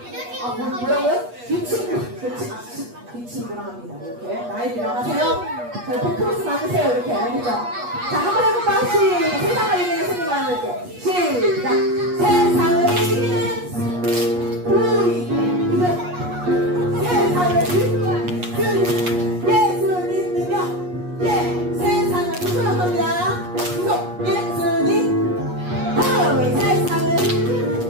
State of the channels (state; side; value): late; left; 8.3 ms